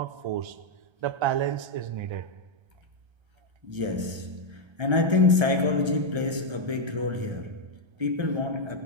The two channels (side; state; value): left; late; 1.3 ms